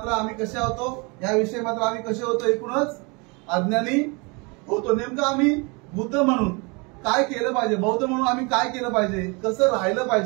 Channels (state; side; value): quieter; left; 29.6 dB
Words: आम्ही कसे होतो, याविषयी मात्र आम्ही कसे होतो, एकूणच अज्ञानी होतो. नेमकं आम्ही बुद्ध म्हणून काय केलं पाहिजे, बौद्ध म्हणून आम्ही काय केलं पाहिजे, कसं राहिलं